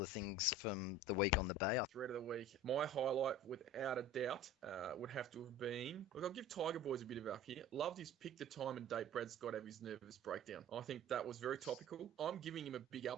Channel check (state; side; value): normal; both; correlation 0.40